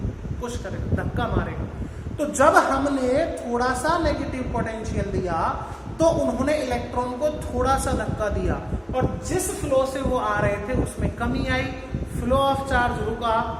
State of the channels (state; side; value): identical; both; correlation 1.00